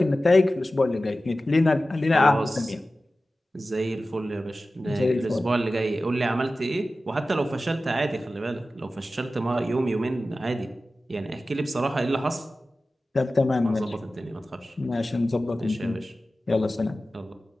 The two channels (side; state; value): both; normal; correlation 0.95